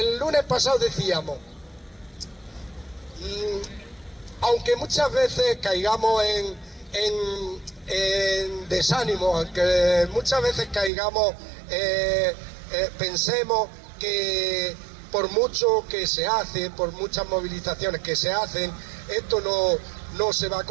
lunes pasado decíamos, aunque muchas veces caigamos en desánimo, aunque muchas veces caigamos, pensemos que por mucho que se hace, por muchas movilizaciones que se hacen, esto no se va a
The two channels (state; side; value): drops out; left; at 10.9 s